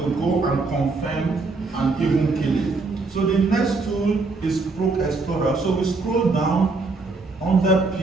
go and confirm and even kill it. So the next tool is Proc Explorer. So we scroll down under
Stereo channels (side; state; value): left; quieter; 3.8 dB